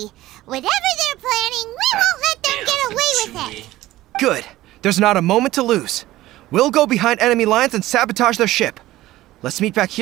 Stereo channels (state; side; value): quieter; left; 16.2 dB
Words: Whatever they're planning, we won't let them get away with it. Good. There's not a moment to lose. We'll go behind enemy lines and sabotage their ship. Let's meet back